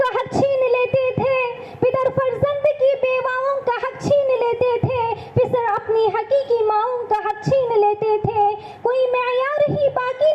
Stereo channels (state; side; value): identical; both; correlation 1.00